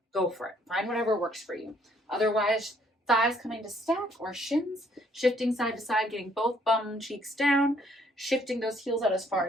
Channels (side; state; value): both; normal; correlation 0.65